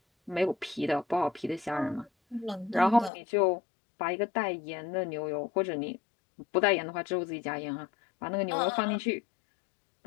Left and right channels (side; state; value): right; drops out; at 3.1 s